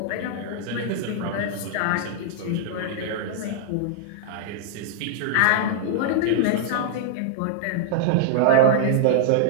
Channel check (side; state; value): both; different; correlation -0.01